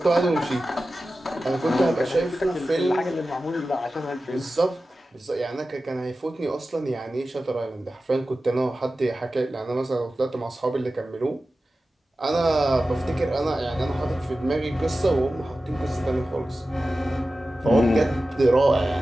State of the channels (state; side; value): normal; both; correlation 0.94